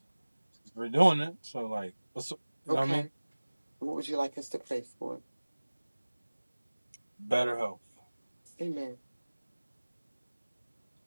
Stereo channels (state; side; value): inverted; both; correlation -1.00